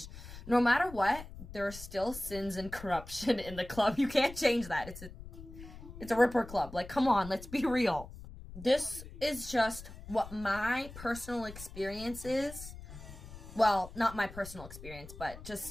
No matter what, there are still sins and corruption in the club. You can't change that. It's a Ripper club. Like, come on, let's be real. This is just what my personal experience is. Well, not my personal experience, but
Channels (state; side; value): noise; left; rumble, 14 dB below the sound